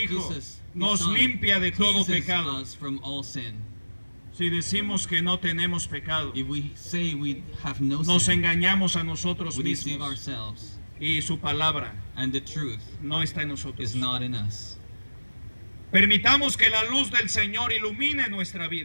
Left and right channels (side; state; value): both; inverted; correlation -1.00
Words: Jesus, His nos Son, limpia de todo cleanses pecado. us from all sin. Si decimos que no tenemos pecado, If we say we have no nos sin, engañamos a nosotros we deceive mismos ourselves, y su palabra and the truth no está en nosotros. is not in us. Permitamos que la luz del Señor ilumine nuestra